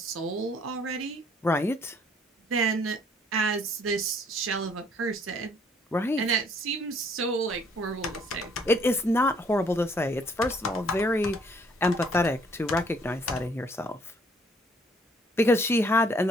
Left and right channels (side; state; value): both; normal; correlation 0.63